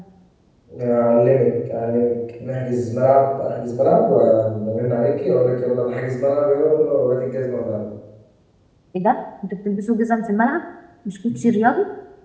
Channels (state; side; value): identical; both; correlation 1.00